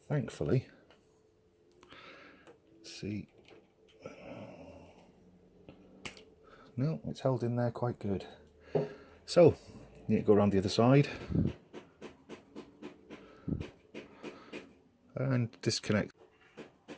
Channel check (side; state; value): both; identical; correlation 1.00